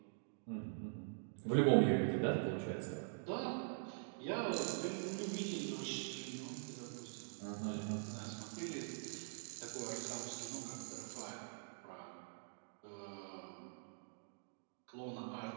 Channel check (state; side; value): silent; left; digital silence